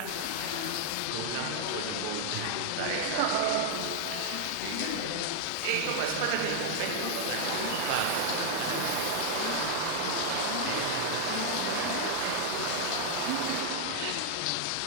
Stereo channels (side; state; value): both; different; correlation 0.00